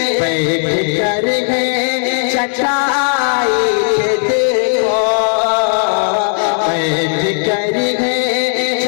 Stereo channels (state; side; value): silent; right; digital silence